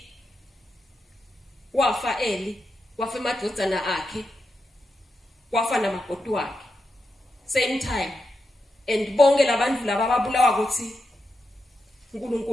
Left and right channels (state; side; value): normal; both; correlation 0.87